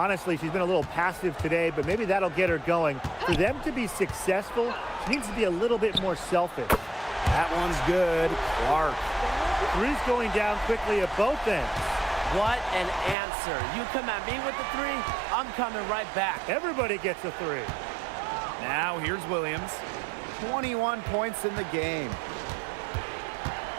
she's been a little passive today, but maybe that'll get her going. For them to be successful, she needs to be a little bit more selfish. That one's good. Clark. Three's going down quickly at both ends. What an answer. You come at me with the 3, I'm coming right back. Everybody gets a 3. Now here's Williams. 21 points in the game.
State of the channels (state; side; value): drops out; left; at 13.2 s